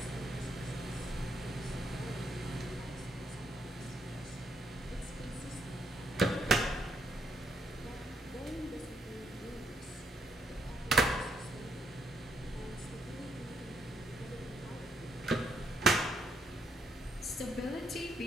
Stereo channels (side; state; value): both; normal; correlation 0.75